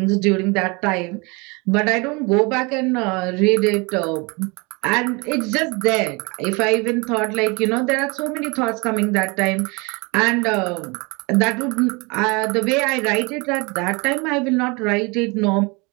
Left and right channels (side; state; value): left; quieter; 28.1 dB